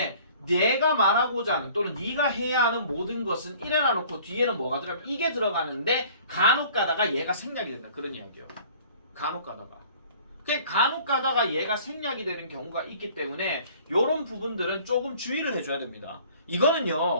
내가 말하고자 하는 또는 네가 해야 하는 모든 것은 이래 놔놓고 뒤에는 뭐가 들어가면 이게 들어가는데 간혹 가다가 얘가 생략이 된다. 그런 이야기예요. 간혹 가다가. 그 간혹 가다가 얘가 생략이 되는 경우가 있기 때문에 이런 부분들은 조금 주의를 해줘야 됩니다.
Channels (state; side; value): inverted; both; correlation -0.51